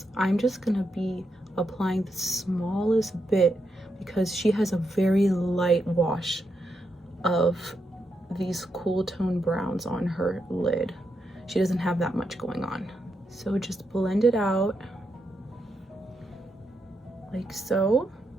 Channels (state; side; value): normal; both; correlation 0.83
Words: I'm just gonna be applying the smallest bit because she has a very light wash of these cool tone browns on her lid. She doesn't have that much going on. So just blend it out like so.